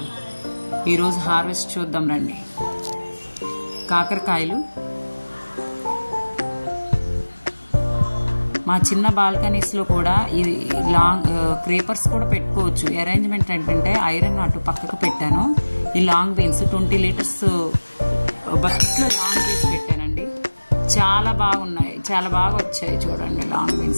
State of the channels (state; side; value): inverted; both; correlation -1.00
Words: ఈరోజు హార్వెస్ట్ చూద్దాం రండి. కాకరకాయలు మా చిన్న బాల్కనీస్లో కూడా ఇది లాంగ్ క్రీపర్స్ కూడా పెట్టుకోవచ్చు. అరేంజ్మెంట్ ఏంటంటే ఐరన్ అటు పక్కకు పెట్టాను. ఈ లాంగ్ బీన్స్ 20 లీటర్స్ బకెట్లో లాంగ్ బీన్స్ పెట్టానండి. చాలా బాగున్నాయి, చాలా బాగా వచ్చాయి. చూడండి లాంగ్